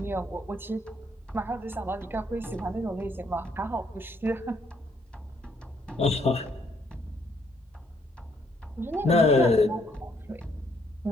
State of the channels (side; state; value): both; normal; correlation 0.70